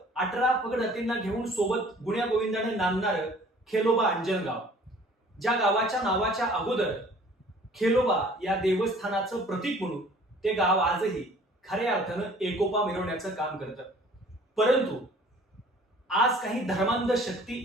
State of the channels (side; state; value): both; normal; correlation 0.52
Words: 18 पगड हत्तींना घेऊन सोबत गुण्या गोविंदाने नांदणारं खेलोबा अंजनगाव, ज्या गावाच्या नावाच्या अगोदर खेलोबा या देवस्थानाचं प्रतीक म्हणून ते गाव आजही खऱ्या अर्थानं एकोपा मिरवण्याचं काम करतं. परंतु आज काही धर्मांध शक्ती